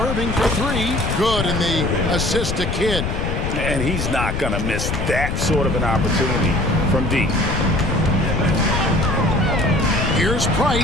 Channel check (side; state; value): left; noise; rumble, 2 dB below the sound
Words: for 3. Good in the assist to Kidd. And he's not going to miss that sort of an opportunity from deep. Here's